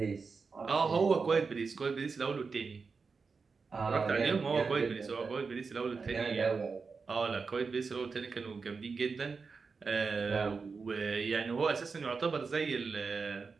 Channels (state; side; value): quieter; left; 4.8 dB